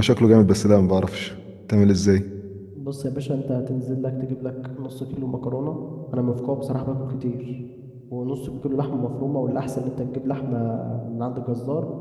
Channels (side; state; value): both; identical; correlation 1.00